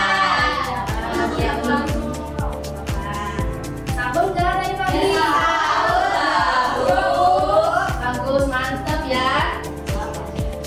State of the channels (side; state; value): both; identical; correlation 1.00